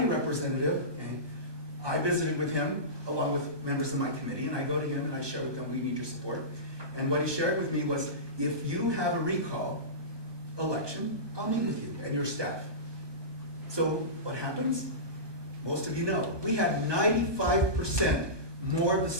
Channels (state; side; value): late; left; 1.2 ms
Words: representative, and I visited with him along with members of my committee, and I go to him and I share with them, we need your support. And what he shared with me was, if you have a recall election, I'll meet with you and your staff. So what happens? Most of you know, we had 95% more of the